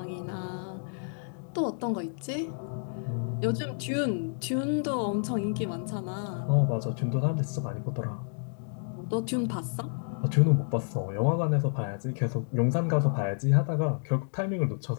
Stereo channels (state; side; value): silent; right; digital silence